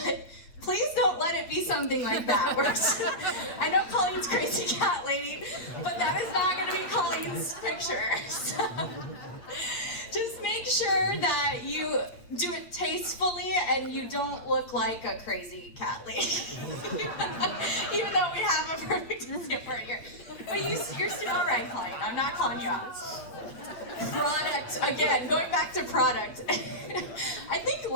please don't let it be something like that. I know Colleen's crazy cat lady, but that is not going to be Colleen's picture. So, just make sure that you do it tastefully and you don't look like a crazy cat lady. Even though we have a perfect example right here. But you're still all right, Colleen. I'm not calling you out. Product, again, going back to product. I think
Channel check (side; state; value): right; late; 8.7 ms